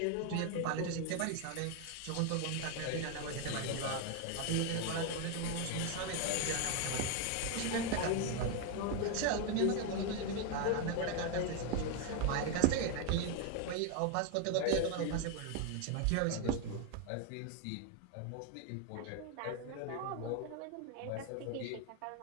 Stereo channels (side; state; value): both; different; correlation 0.01